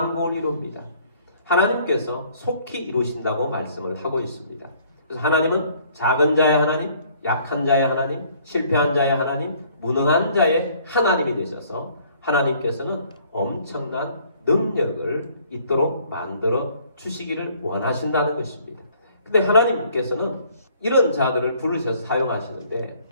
이룹니다. 하나님께서 속히 이루신다고 말씀을 하고 있습니다. 그래서 하나님은 작은 자의 하나님, 약한 자의 하나님, 실패한 자의 하나님, 무능한 자의 하나님이 되셔서 하나님께서는 엄청난 능력을 있도록 만들어 주시기를 원하신다는 것입니다. 근데 하나님께서는 이런 자들을 부르셔서 사용하시는데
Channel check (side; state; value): both; inverted; correlation -0.60